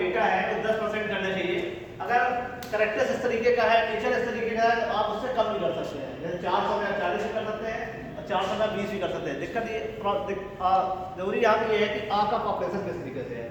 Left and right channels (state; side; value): identical; both; correlation 1.00